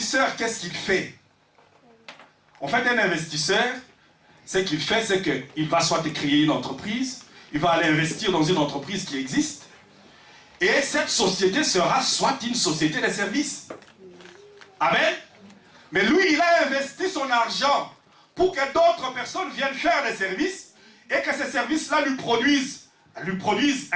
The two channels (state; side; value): identical; both; correlation 1.00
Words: qu'est-ce qu'il fait? En fait, un investisseur, ce qu'il fait, c'est qu'il va soit créer une entreprise, il va aller investir dans une entreprise qui existe, et cette société sera soit une société de services. Amen. Mais lui, il a investi son argent pour que d'autres personnes viennent faire des services et que ces services-là lui produisent